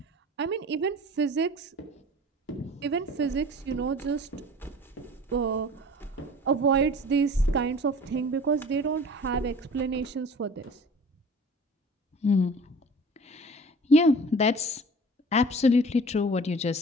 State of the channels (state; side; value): normal; both; correlation 0.43